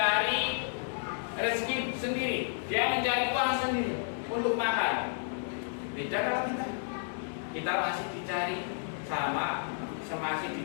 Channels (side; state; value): right; silent; digital silence